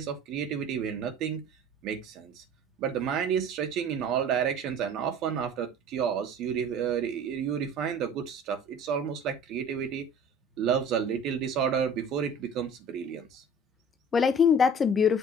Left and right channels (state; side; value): normal; both; correlation 0.44